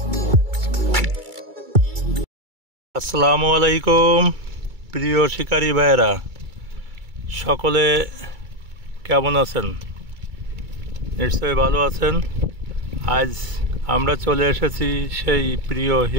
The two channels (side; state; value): left; late; 2.3 ms